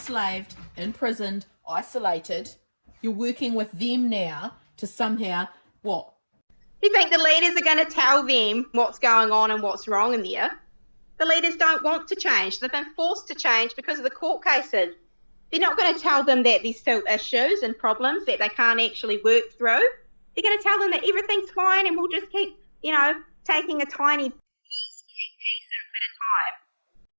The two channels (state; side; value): inverted; both; correlation -1.00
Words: imprisoned, isolated, you're working with them now to somehow, what? You think the leaders are going to tell them what's going on and what's wrong in there? The leaders don't want to change. They've been forced to change because of the court cases. They're not going to tell them that there's still issues and problems that they can't actually work through. They're going to tell them that everything's fine and we'll just keep, taking a tiny piece at a time.